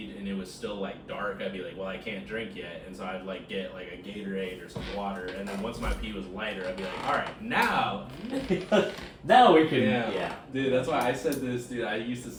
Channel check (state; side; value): identical; both; correlation 1.00